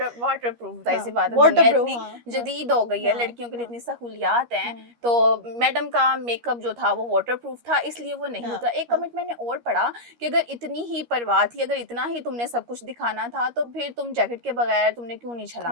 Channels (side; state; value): left; late; 13 ms